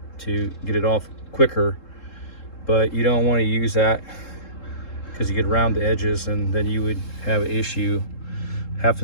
to get it off quicker. But you don't want to use that because you get around the edges, and then you would have an issue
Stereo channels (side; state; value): right; late; 3.7 ms